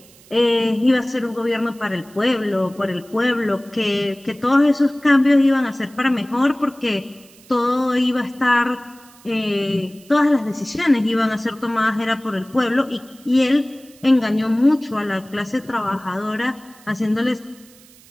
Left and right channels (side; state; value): right; noise; hiss, 25 dB below the sound